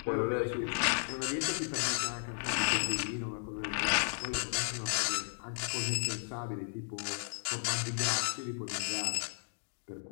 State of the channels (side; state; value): right; silent; digital silence